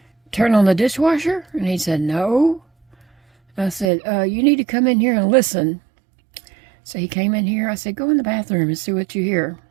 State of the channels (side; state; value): left; drops out; at 3.9 s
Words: turn on the dishwasher? And he said, no. I said, you need to come in here and listen. So he came in here. I said, go in the bathroom and see what you hear.